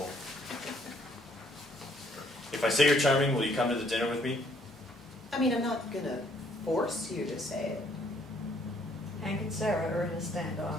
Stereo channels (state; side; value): normal; both; correlation 0.65